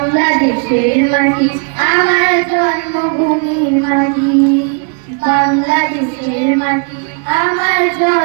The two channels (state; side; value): quieter; left; 39.9 dB